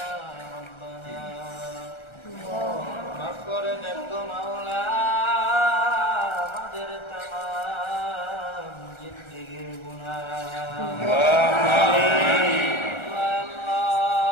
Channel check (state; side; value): late; right; 1.4 ms